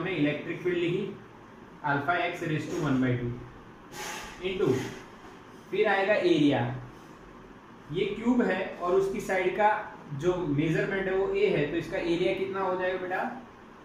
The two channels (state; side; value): identical; both; correlation 1.00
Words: इलेक्ट्रिक फील्ड लिखी, alpha x raise to 1/2 into, फिर आएगा एरिया। ये क्यूब है और उसकी साइड का जो मेजरमेंट है वो a है, तो इसका एरिया कितना हो जाएगा बेटा?